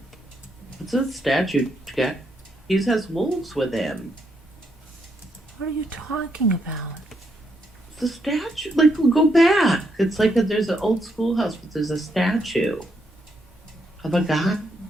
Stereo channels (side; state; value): both; normal; correlation 0.77